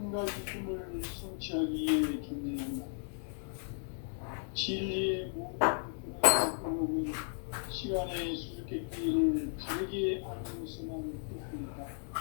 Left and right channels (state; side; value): silent; right; digital silence